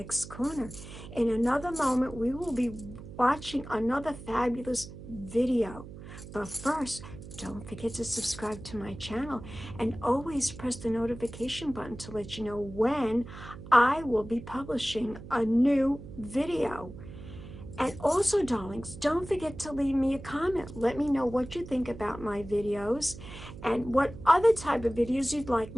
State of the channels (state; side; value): noise; right; hum, 14 dB below the sound